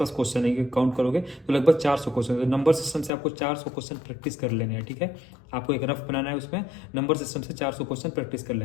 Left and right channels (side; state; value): right; drops out; at 3.1 s